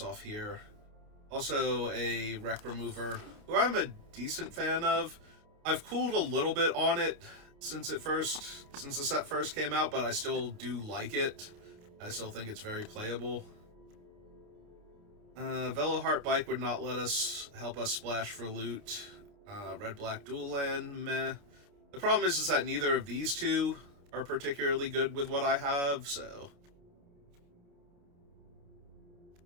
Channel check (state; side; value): late; left; 29 ms